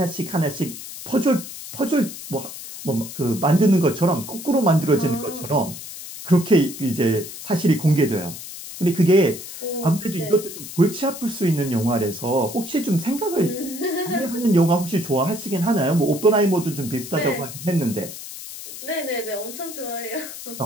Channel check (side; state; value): left; noise; hiss, 11 dB below the sound